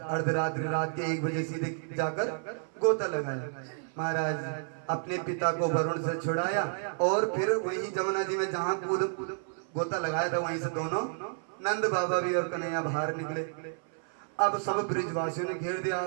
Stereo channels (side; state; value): left; silent; 56 dB below the other